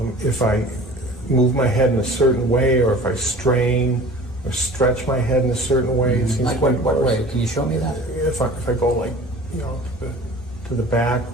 If I move my head in a certain way, or if I strain or stretch my head in a certain way, it seems like quite what worse. way? Can you show me that? If I go like, you know, to the back,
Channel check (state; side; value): normal; both; correlation 0.42